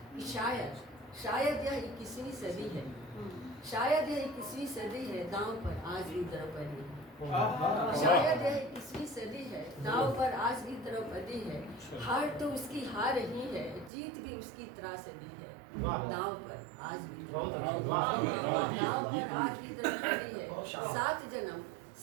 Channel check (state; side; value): drops out; left; at 13.9 s